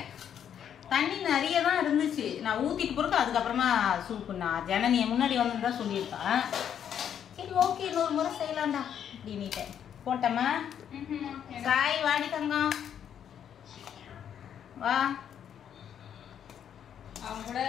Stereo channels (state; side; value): quieter; right; 9.0 dB